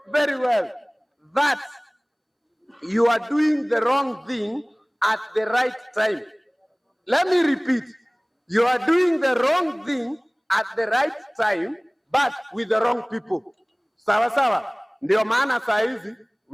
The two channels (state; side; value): identical; both; correlation 1.00